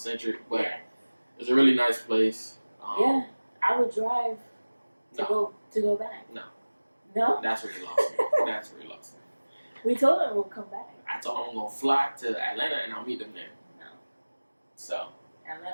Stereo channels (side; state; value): both; inverted; correlation -1.00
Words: but it's a really nice place. Yeah, I would drive to go back. No. That's where you lost me. That's where you lost me. We told them we'll come back. I told them I'm gonna fly to Atlanta and I'll meet them there. No. So.